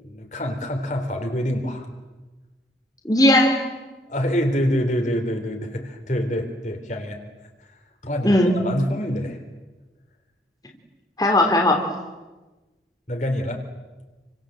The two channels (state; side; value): normal; both; correlation 0.64